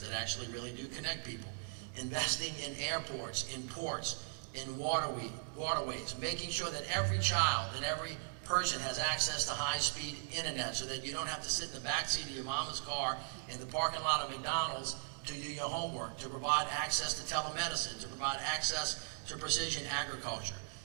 that actually really do connect people, investing in airports, in ports, in waterways, making sure that every child and every person has access to high-speed internet so that you don't have to sit in the backseat of your mama's car in the parking lot of McDonald's to do your homework, to provide access to telemedicine, to provide access to precision agriculture,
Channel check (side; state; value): left; silent; digital silence